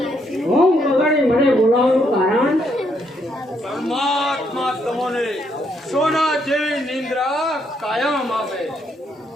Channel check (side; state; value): both; normal; correlation 0.74